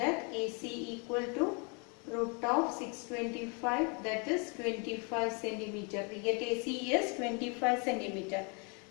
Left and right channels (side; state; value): right; quieter; 34.4 dB